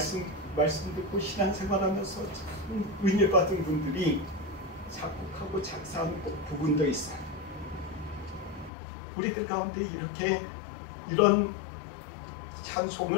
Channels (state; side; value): drops out; right; at 8.7 s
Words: 듣고 신앙생활하면서 참 은혜 받은 분들이 작곡하고 작사한 부분도 있어요. 우리들 가운데 이렇게 이런